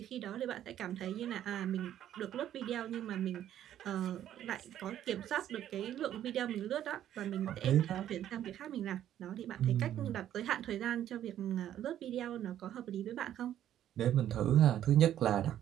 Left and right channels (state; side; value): quieter; left; 11.3 dB